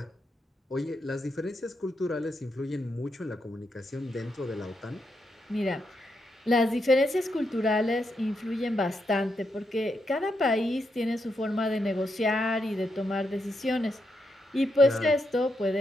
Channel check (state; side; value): normal; both; correlation 0.82